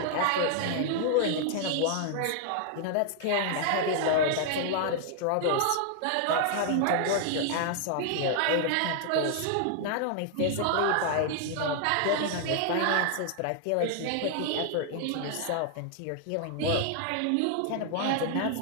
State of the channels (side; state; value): both; different; correlation 0.00